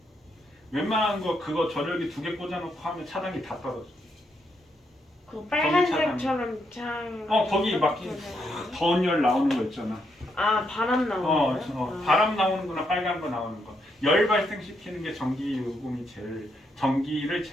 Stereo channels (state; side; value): normal; both; correlation 0.78